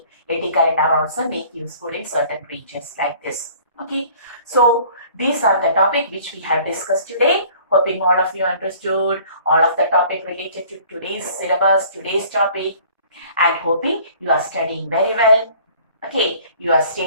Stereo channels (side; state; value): both; inverted; correlation -0.52